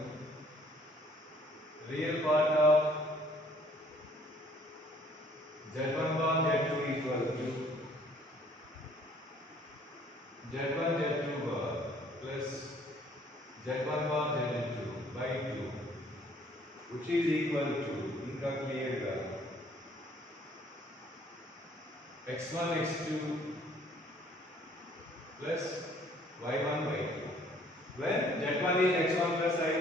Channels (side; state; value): both; normal; correlation 0.59